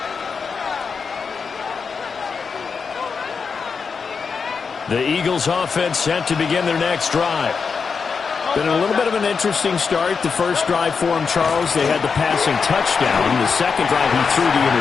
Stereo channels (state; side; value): quieter; right; 5.5 dB